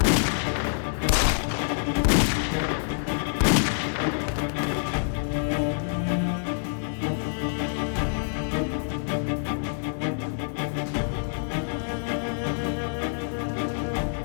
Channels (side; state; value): right; silent; digital silence